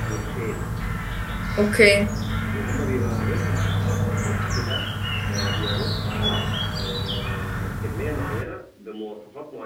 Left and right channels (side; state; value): both; identical; correlation 1.00